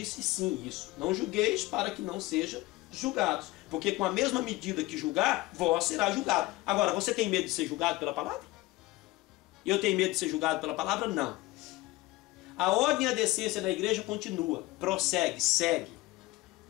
sim isso. Não julgueis para que não sejam julgados. Porque com a mesma medida que julgar, vós será julgado. Agora, você tem medo de ser julgado pela palavra? Eu tenho medo de ser julgado pela palavra? Não. A ordem e a decência da igreja continua, prossegue, segue.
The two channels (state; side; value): quieter; right; 20.0 dB